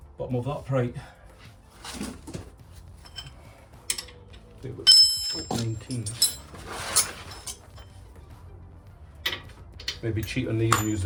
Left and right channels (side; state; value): both; identical; correlation 1.00